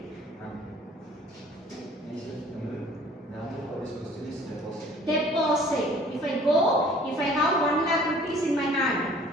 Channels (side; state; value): both; normal; correlation 0.53